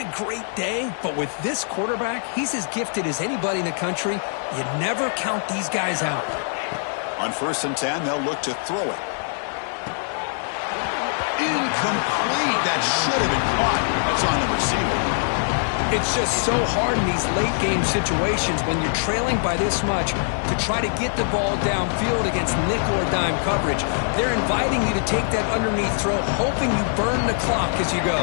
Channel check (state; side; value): silent; right; digital silence